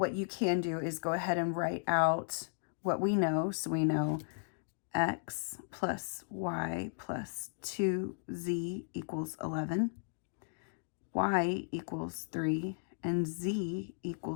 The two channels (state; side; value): silent; right; digital silence